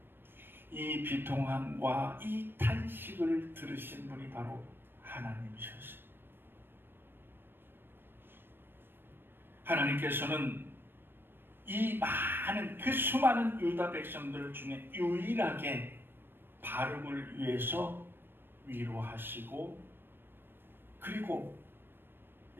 이 비통함과 이 탄식을 들으신 분이 바로 하나님이셨습니다. 하나님께서는 이 많은 그 수많은 유다 백성들 중에 유일하게 바룩을 위해서 위로하시고 그리고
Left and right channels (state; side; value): late; left; 0.099 ms